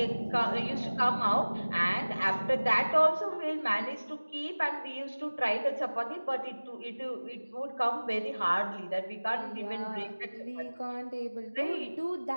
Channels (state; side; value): inverted; both; correlation -1.00